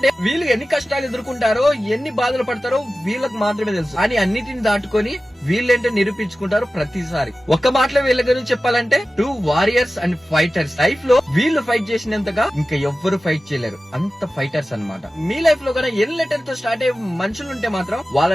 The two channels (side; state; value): both; normal; correlation 0.95